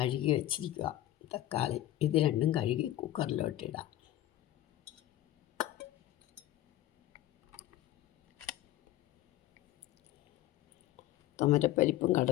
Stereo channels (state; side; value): quieter; right; 14.0 dB